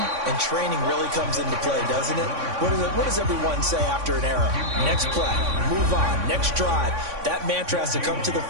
and training really comes into play, doesn't it? What does everyone say after an error? Next play, move on, next drive. That mantra has to come to the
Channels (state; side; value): late; left; 3.5 ms